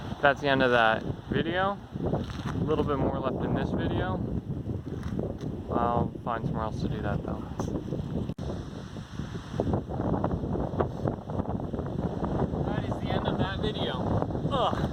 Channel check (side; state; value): both; identical; correlation 1.00